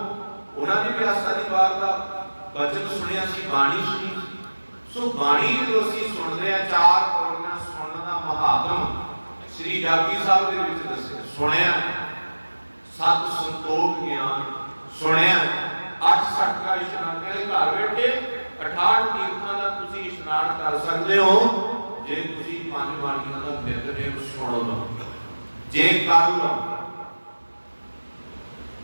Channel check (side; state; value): both; inverted; correlation -1.00